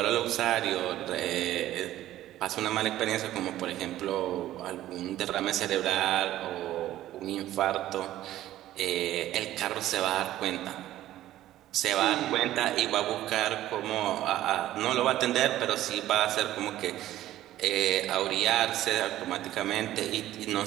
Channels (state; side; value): quieter; left; 13.9 dB